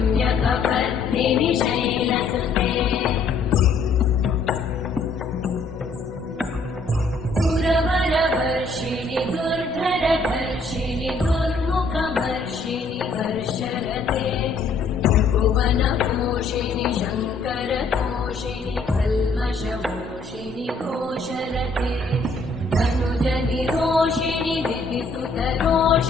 शैलसुते सुरवरवर्षिणि दुर्धरधर्षिणि दुर्मुखवर्षिणि हर्षरते भुवनपोषिणि शङ्करतोषिणि कल्मषमोषिणि घोषरते धनुजनिरोषिणि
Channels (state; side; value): quieter; right; 3.7 dB